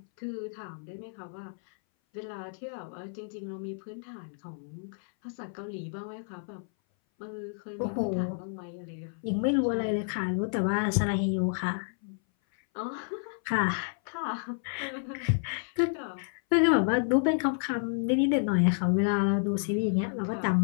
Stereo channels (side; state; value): right; silent; 58 dB below the other